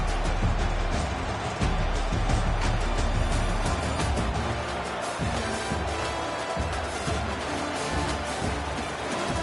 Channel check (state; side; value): identical; both; correlation 1.00